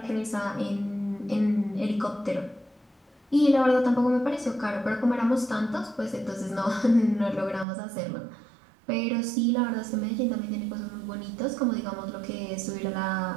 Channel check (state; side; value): drops out; left; at 7.7 s